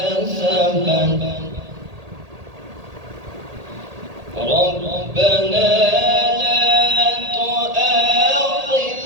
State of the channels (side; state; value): left; late; 1.8 ms